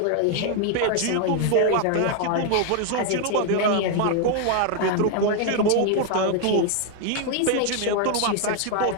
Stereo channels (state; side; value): different; both; correlation 0.00